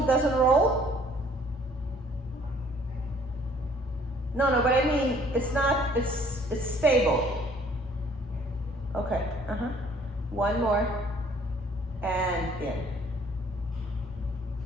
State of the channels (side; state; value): both; normal; correlation 0.58